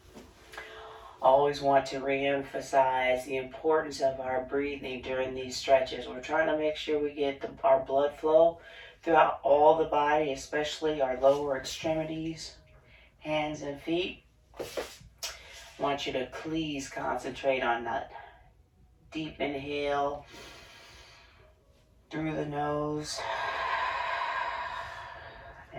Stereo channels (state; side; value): identical; both; correlation 1.00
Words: Always want to re-emphasize the importance of our breathing during these stretches. We're trying to make sure we get our blood flow throughout all the body, especially our lower extremities, hands and feet. I want you to please concentrate on that deep inhale through the nose